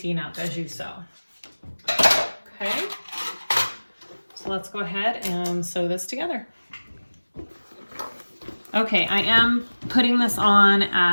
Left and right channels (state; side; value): inverted; both; correlation -1.00